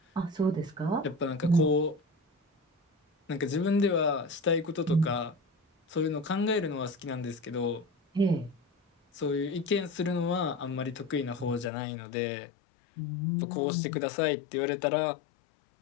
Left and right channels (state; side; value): drops out; right; at 11.7 s